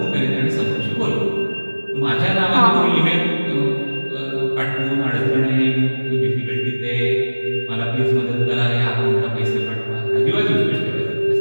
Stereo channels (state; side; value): inverted; both; correlation -1.00